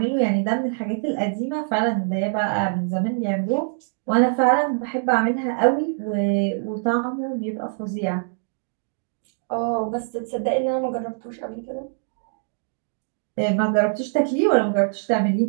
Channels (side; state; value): left; silent; digital silence